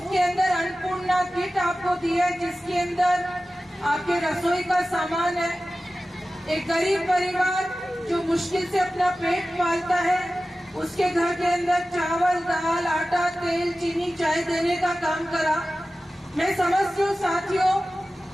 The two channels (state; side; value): normal; both; correlation 0.95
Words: के अंदर अन्नपूर्णा किट आपको दी है, जिसके अंदर आपके रसोई का सामान है। एक गरीब परिवार जो मुश्किल से अपना पेट पालता है, उसके घर के अंदर चावल, दाल, आटा, तेल, चीनी, चाय देने का काम करा। मैं समझती हूँ साथियों,